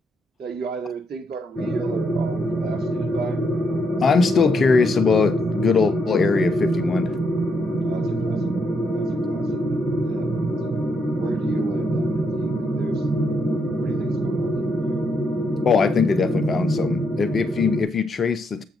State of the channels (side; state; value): both; normal; correlation 0.77